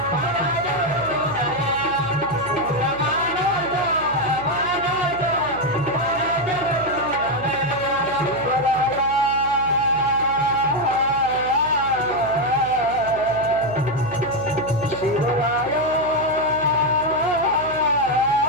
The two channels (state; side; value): noise; right; hum, 14 dB below the sound